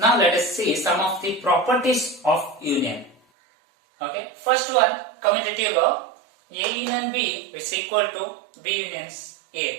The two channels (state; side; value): drops out; left; at 3.2 s